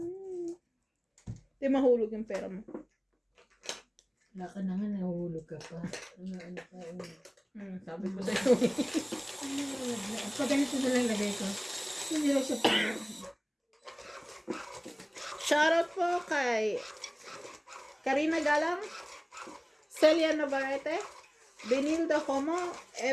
Di mahulog yung pera mo. wala ka na nga, nahuhulog ka pa. Ano ka, Sabi ko sa'yo. pag ganito na lang lagay ko. Hindi lang siya pala. Shoutout po kay Karina Galang, Celia Navarrete, Benilda Homo,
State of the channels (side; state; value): both; identical; correlation 1.00